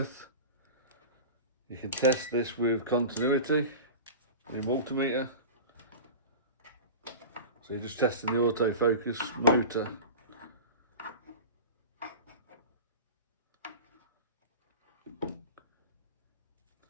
You can test this with continuity, your multimeter. So you're just testing the autofocus motor.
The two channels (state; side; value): inverted; both; correlation -0.32